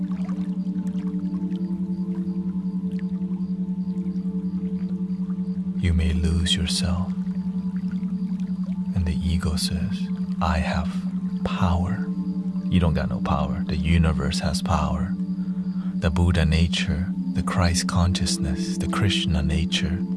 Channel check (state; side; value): identical; both; correlation 1.00